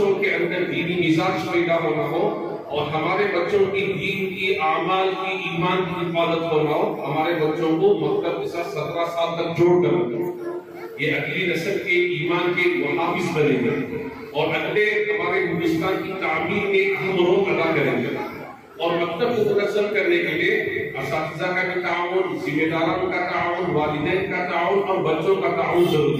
کے اندر دینی مزاج پیدا ہونا ہو اور ہمارے بچوں کی دین کی، اعمال کی، ایمان کی حفاظت ہونا ہو، ہمارے بچوں کو مکتب کے ساتھ 17 سال تک جوڑ کر رکھیں۔ یہ اگلی نسل کے ایمان کے محافظ بنیں گے اور اگلے ہمارے ہندوستان کی تعمیر میں اہم رول ادا کریں گے۔ اور مکتب کو منظم کرنے کے لیے اساتذہ کا بھی تعاون، ذمہ داروں کا تعاون، والدین کا تعاون اور بچوں کا تعاون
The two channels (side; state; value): both; identical; correlation 1.00